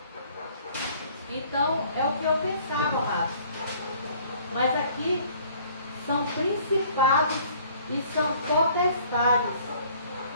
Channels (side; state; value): both; inverted; correlation -0.56